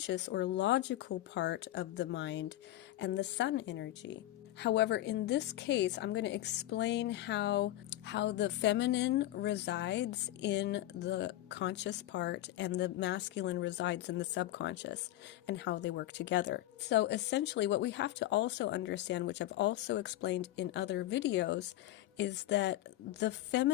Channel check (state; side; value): quieter; right; 14.7 dB